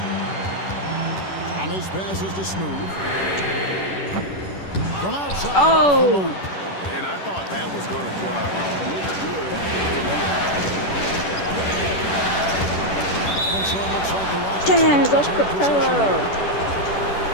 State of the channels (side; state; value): right; late; 10 ms